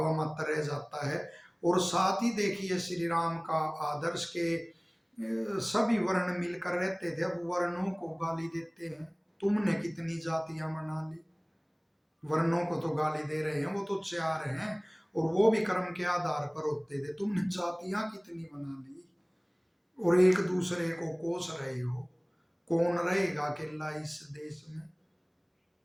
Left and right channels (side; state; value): both; identical; correlation 1.00